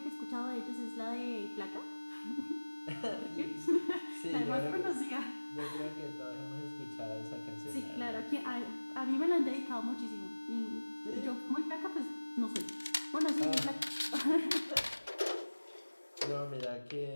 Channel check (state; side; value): inverted; both; correlation -1.00